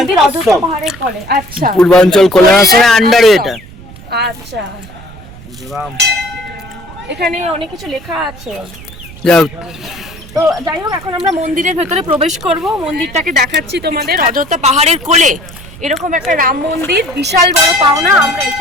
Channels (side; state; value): right; noise; rumble, 17 dB below the sound